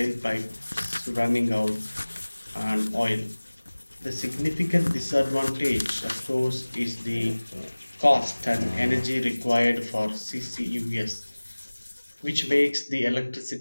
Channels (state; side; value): inverted; both; correlation -1.00